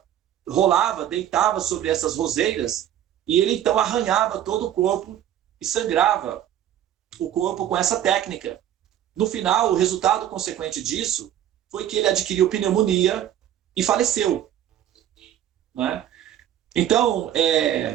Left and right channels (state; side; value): quieter; left; 11.1 dB